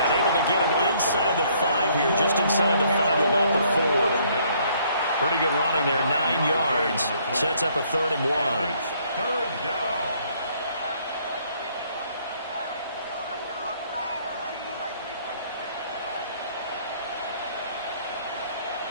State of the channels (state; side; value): inverted; both; correlation -0.64